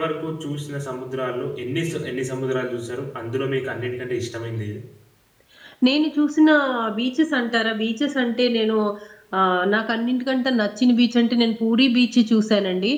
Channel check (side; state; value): both; identical; correlation 1.00